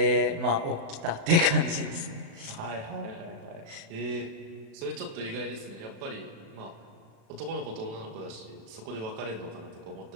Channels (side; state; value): left; late; 36 ms